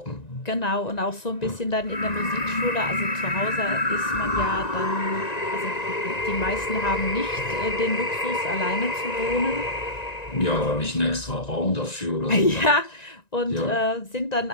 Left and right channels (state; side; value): late; right; 1.9 ms